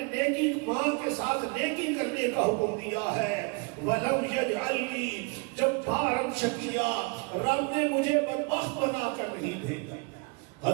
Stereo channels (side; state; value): left; quieter; 31.2 dB